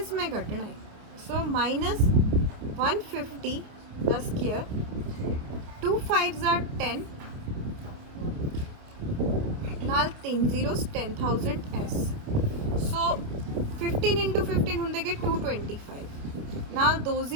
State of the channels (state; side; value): late; left; 28 ms